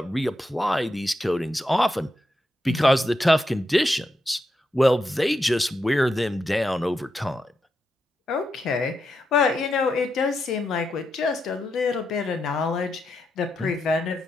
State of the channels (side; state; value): both; normal; correlation 0.84